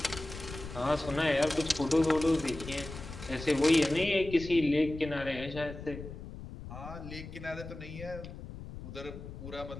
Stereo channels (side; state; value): left; noise; rumble, 11 dB below the sound